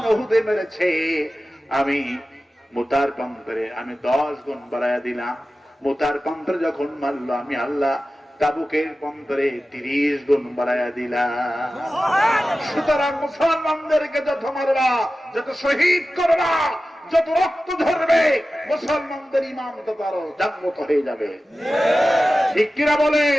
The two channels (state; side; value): normal; both; correlation 0.95